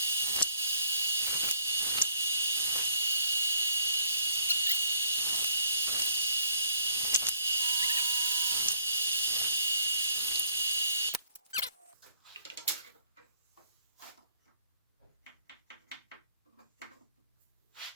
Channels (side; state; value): both; inverted; correlation -0.65